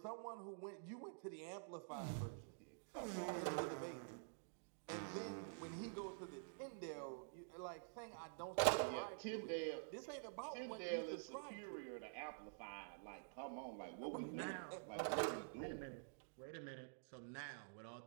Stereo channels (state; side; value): silent; left; digital silence